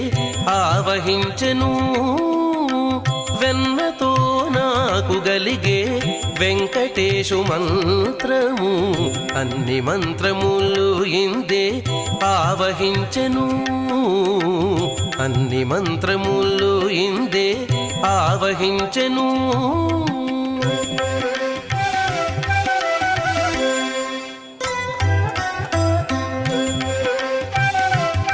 ఆవహించెను వెన్నతో నాకు గలిగే వెంకటేశు మంత్రము అన్ని మంత్రములు ఇందే ఆవహించెను అన్ని మంత్రములు ఇందే ఆవహించెను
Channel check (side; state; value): both; identical; correlation 1.00